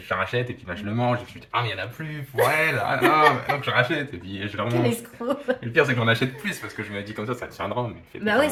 la rachète, et puis là je le mange, et puis je me dis, ah mais il n'y en a plus pour elle, ah non, donc je rachète, et puis je la Quel mange. escroc. Et le pire, c'est que j'en achète plus, parce que je me dis comme ça tiendra, mais Bah ouais,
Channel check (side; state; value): both; identical; correlation 1.00